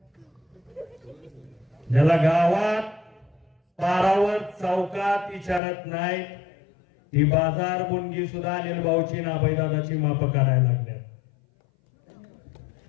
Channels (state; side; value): drops out; right; at 5.6 s